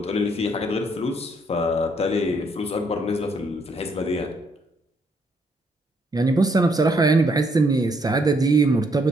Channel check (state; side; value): normal; both; correlation 0.71